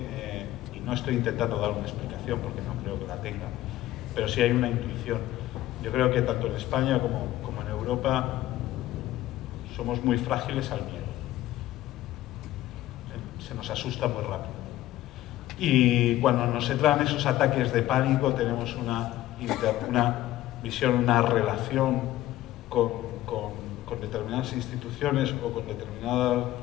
y no estoy intentando dar una explicación porque no creo que la tenga, pero sí hay una intuición. Yo creo que tanto en España como en Europa somos muy frágiles al miedo. Se nos asusta muy rápido. Y cuando nos entran esos ataques de pánico tenemos una visión, una relación con determinadas instituciones o con determinada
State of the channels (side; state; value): right; quieter; 14.9 dB